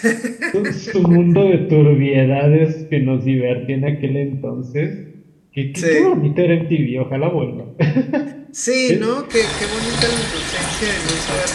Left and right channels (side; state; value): both; identical; correlation 1.00